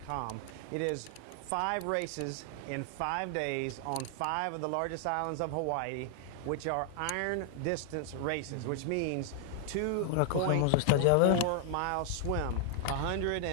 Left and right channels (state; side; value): different; both; correlation 0.00